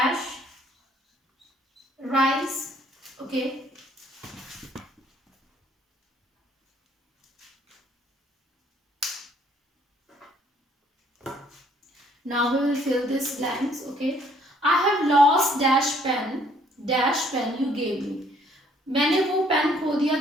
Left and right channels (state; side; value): normal; both; correlation 0.62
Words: rice? Okay. Now we will fill this blanks. Okay. I have lost dash pen you gave me. मैंने वो पेन खो दिया